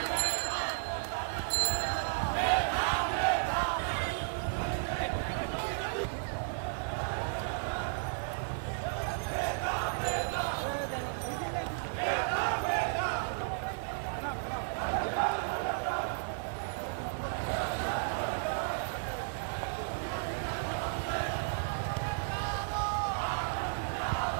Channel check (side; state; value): left; silent; digital silence